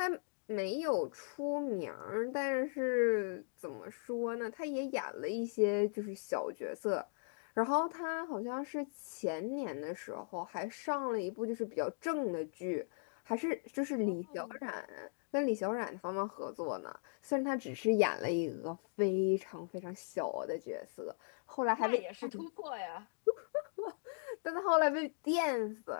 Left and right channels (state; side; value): silent; right; digital silence